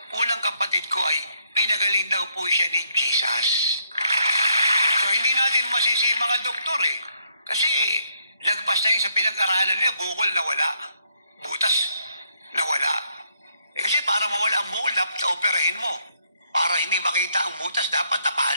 po ng kapatid ko ay, pinagaling daw po siya ni Jesus. So, hindi natin masisi mga doktor eh. Kasi, lagpas na yun sa pinag-aralan niya, bukol nawala. Butas nawala. Kasi para mawala ang bukol, dapat operahin mo. Para hindi makita ang butas, dapat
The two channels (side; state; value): both; inverted; correlation -0.73